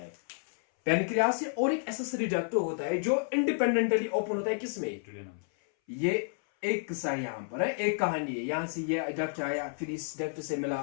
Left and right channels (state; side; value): silent; right; 57 dB below the other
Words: पैनक्रियास से और एक एसेसरी डक्ट होता है जो इंडिपेंडेंटली ओपन होता है किसमें, ये एक किस्सा यहां पर है, एक कहानी है। यहां से ये डक्ट आया, फिर इस डक्ट से मिला